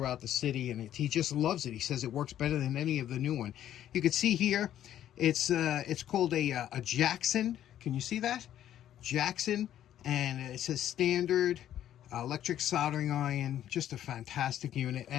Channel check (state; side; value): quieter; right; 11.4 dB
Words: the city, and he just loves it. He says it works better than any of the new one. You can see here, it's called a Jackson. Can you see that? Jackson, and it says standard electric soldering iron. Just a fantastic unit.